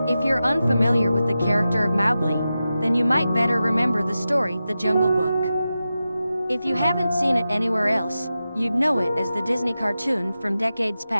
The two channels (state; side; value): inverted; both; correlation -0.92